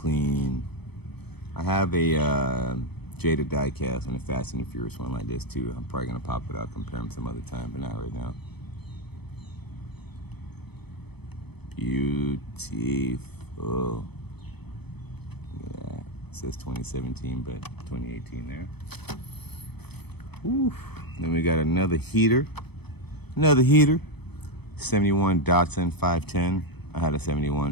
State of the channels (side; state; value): right; late; 0.98 ms